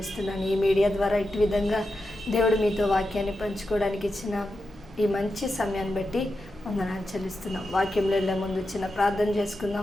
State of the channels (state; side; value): normal; both; correlation 0.89